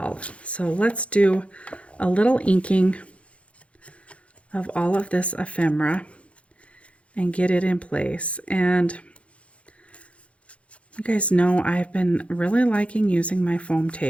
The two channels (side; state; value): right; late; 0.062 ms